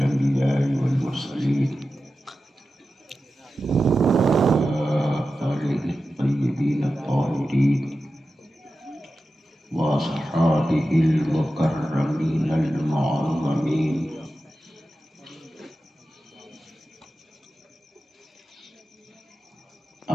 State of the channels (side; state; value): both; normal; correlation 0.93